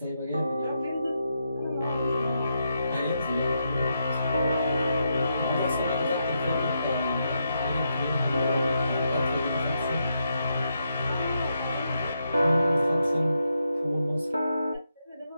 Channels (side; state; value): both; inverted; correlation -0.82